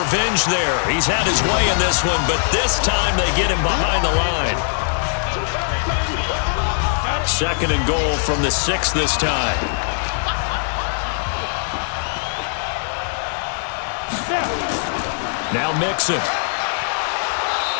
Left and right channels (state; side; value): silent; right; 63 dB below the other